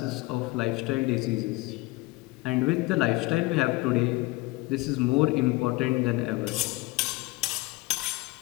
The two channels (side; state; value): right; quieter; 22.1 dB